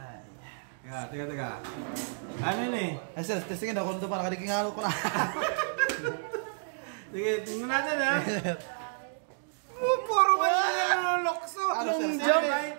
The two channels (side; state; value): left; silent; digital silence